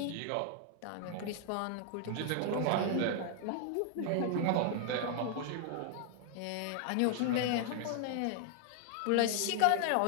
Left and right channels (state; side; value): different; both; correlation 0.00